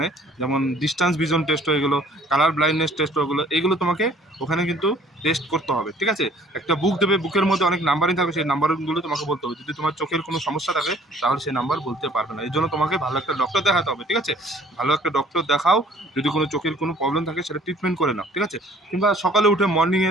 যেমন ডিস্টেন্স ভিজন টেস্ট হয়ে গেলো, কালার ব্লাইন্ডনেস টেস্ট হয়ে গেলো, এগুলো তোমাকে ওখানে কিন্তু টেস্ট করতে হবে, ঠিক আছে? একটা বুক দেবে, বুকের মধ্যে অনেক নাম্বারিং থাকবে, সেই নাম্বারগুলো তোমাকে বলতে হবে। যদি তোমার চোখের কোনো সমস্যা থাকে তাহলে সেই নাম্বার বলতে পারবে না, এই জন্য তোমাকে ভালো একটা ডক্টর দেখাতে হবে, ঠিক আছে? ভালো একটা ডক্টর দেখাও, যদি কোনো চোখের কোনো প্রবলেম থাকে সেটা ট্রিটমেন্ট করে নাও, ঠিক আছে? কিংবা সকালে উঠে মর্নিংয়ে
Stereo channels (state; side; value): normal; both; correlation 0.56